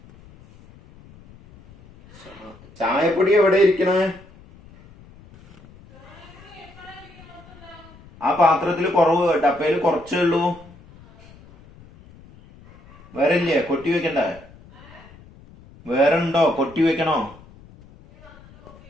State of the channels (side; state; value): left; noise; rumble, 23 dB below the sound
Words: ചായപ്പൊടി എവിടെ ഇരിക്കണേ? ആ പാത്രത്തിൽ കുറവ്, ഡപ്പയിൽ കുറച്ചേ ഉള്ളൂ. വേറെ ഇല്ലേ? കൊട്ടി വെക്കണ്ടേ? വേറെ ഉണ്ടോ? കൊട്ടി വെക്കണോ?